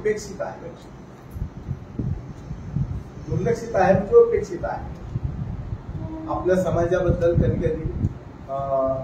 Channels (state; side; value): identical; both; correlation 1.00